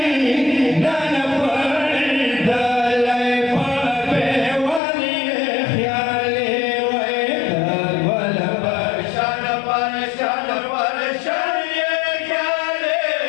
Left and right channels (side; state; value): right; drops out; at 4.8 s